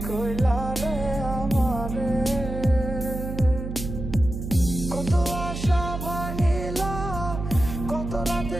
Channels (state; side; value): noise; right; hum, 7 dB below the sound